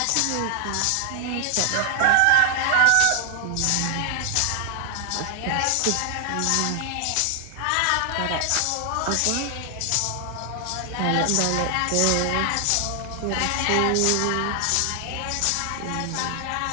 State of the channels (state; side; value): different; both; correlation 0.00